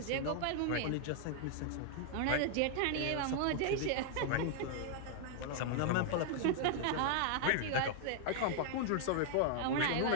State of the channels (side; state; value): both; different; correlation 0.00